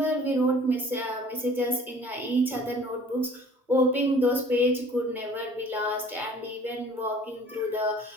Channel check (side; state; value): both; normal; correlation 0.50